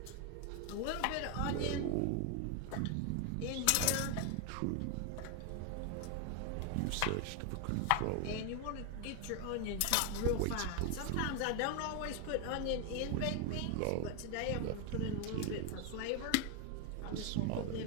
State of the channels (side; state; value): both; different; correlation 0.01